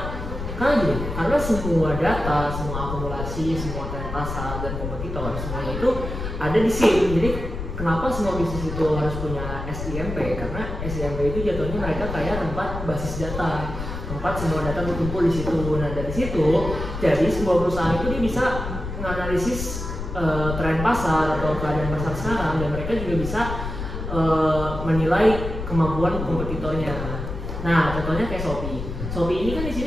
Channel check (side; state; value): left; noise; rumble, 6 dB below the sound